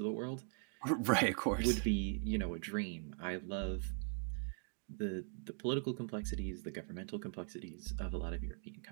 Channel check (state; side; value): silent; left; 51 dB below the other